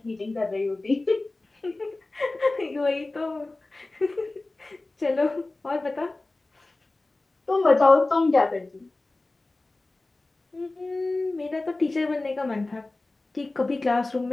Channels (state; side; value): quieter; right; 3.0 dB